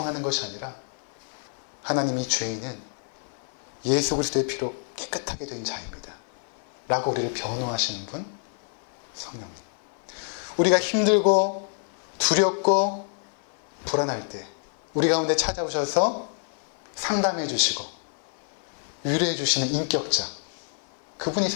것이 아니라 하나님이 죄인은 예수 그리스도의 피로 깨끗하게 된 자입니다 라고 우리를 변호하시는 분, 성령님. 우리가 힘들고 두렵고 불안할 때 우리 가운데 찾아오셔서 상담해 주시고 위로해 주시는 인격자, 그분이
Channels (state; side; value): silent; right; 55 dB below the other